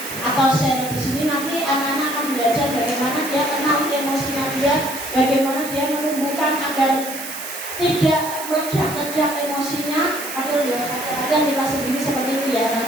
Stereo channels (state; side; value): noise; right; hiss, 9 dB below the sound